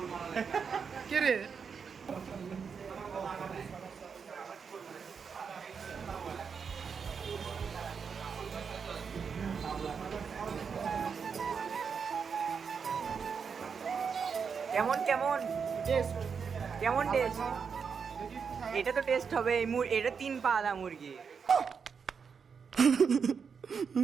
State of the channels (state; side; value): quieter; left; 6.1 dB